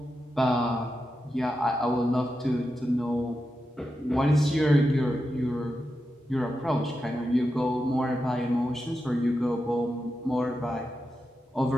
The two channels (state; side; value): normal; both; correlation 0.89